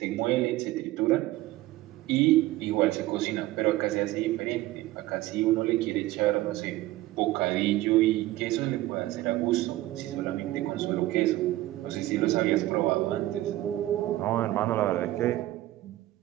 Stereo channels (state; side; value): quieter; left; 16.5 dB